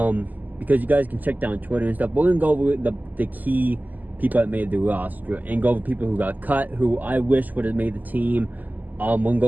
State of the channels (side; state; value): left; late; 0.082 ms